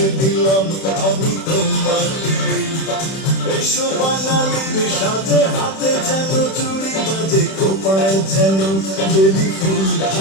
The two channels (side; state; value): right; late; 31 ms